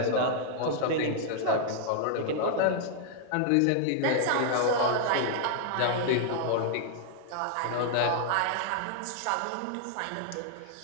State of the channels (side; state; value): both; different; correlation -0.01